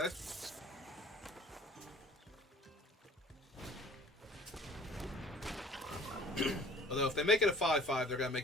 Although if they make it a 5/5, they're going to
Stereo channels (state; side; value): normal; both; correlation 0.49